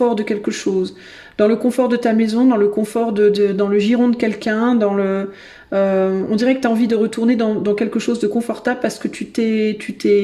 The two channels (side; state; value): both; identical; correlation 1.00